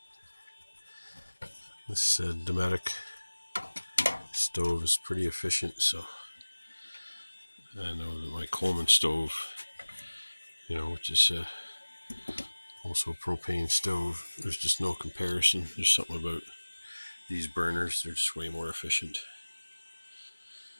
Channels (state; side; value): inverted; both; correlation -1.00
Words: This Dometic stove is pretty efficient, so I know that my Coleman stove, which is also a propane stove, there's just no comparison. There's something about these burners, they're just way more efficient.